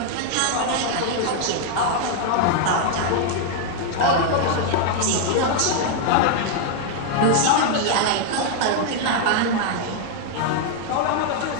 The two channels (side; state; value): both; different; correlation 0.00